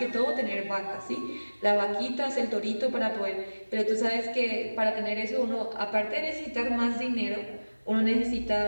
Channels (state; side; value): inverted; both; correlation -1.00